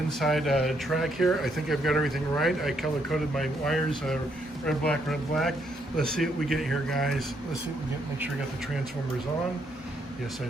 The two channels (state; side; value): normal; both; correlation 0.74